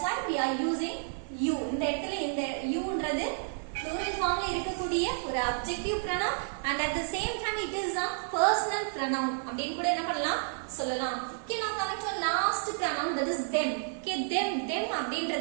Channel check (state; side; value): silent; left; digital silence